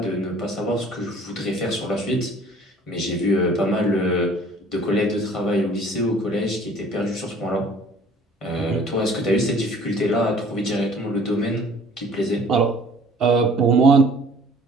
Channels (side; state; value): both; normal; correlation 0.52